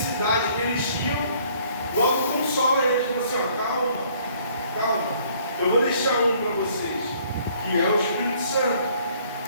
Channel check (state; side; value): inverted; both; correlation -0.60